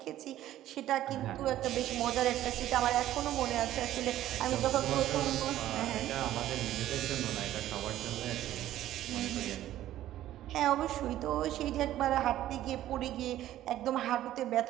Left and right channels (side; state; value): left; quieter; 13.4 dB